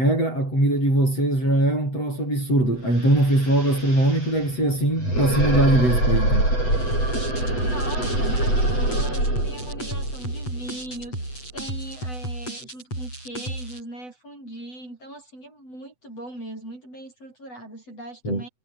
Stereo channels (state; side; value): late; right; 8.0 ms